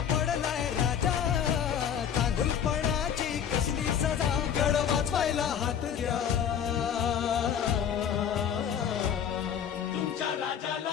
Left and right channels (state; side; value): quieter; right; 8.5 dB